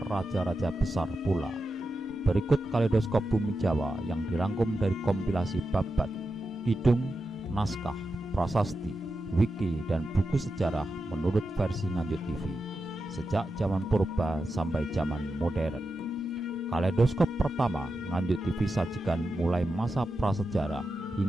raja-raja besar pula. Berikut Kaleidoskop Bumi Jawa yang dirangkum dari kompilasi babat, kidung, naskah, prasasti, wiki, dan buku sejarah menurut versi Nganjuk TV sejak zaman purba sampai zaman modern. Kaleidoskop pertama Nganjuk TV sajikan mulai masa prasejarah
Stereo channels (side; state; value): both; normal; correlation 0.90